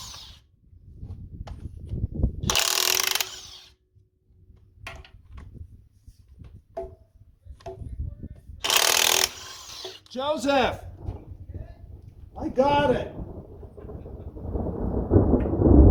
Joseph! I got it!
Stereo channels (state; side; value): identical; both; correlation 1.00